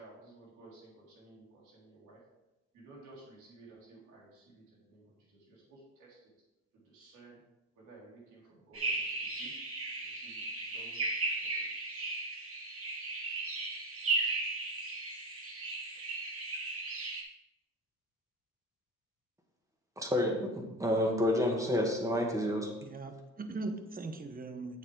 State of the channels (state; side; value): normal; both; correlation 0.29